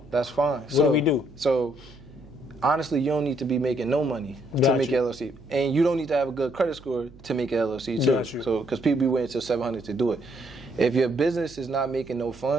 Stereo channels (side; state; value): right; noise; hum, 22 dB below the sound